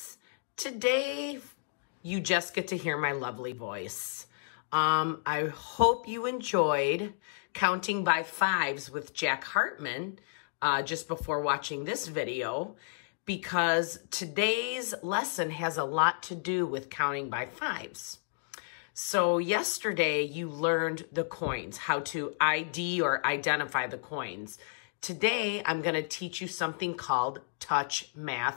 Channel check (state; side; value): silent; right; digital silence